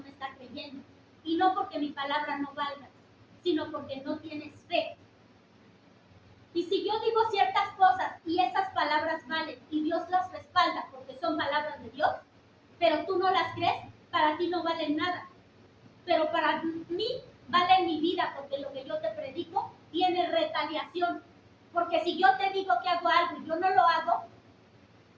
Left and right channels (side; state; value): both; identical; correlation 1.00